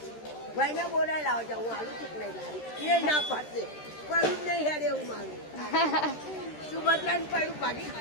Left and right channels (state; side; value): late; right; 13 ms